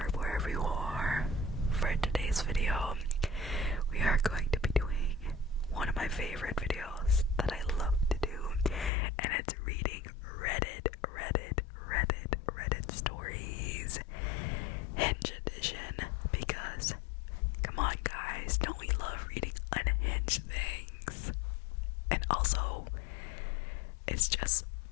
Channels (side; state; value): right; drops out; at 8.9 s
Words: for today's video, we are going to be doing one of my favorite videos that I love to do, and it's reading Reddit stories, Hinge edition, because, come on guys, don't we love reading unhinged things? And also, it's just